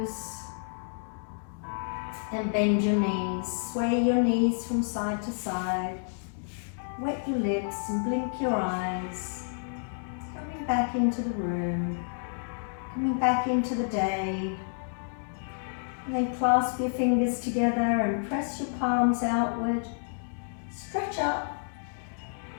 and bend your knees. Sway your knees from side to side. Wet your lips and blink your eyes. Coming back into the room. Coming back into the day. And then clasp your fingers together and press your palms outward. Stretch up.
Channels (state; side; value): silent; right; digital silence